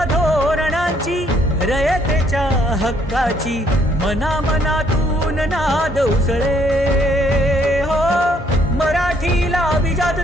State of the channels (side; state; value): both; normal; correlation 0.67